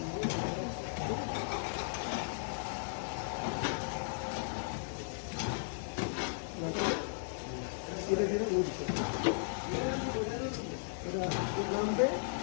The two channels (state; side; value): silent; right; 54 dB below the other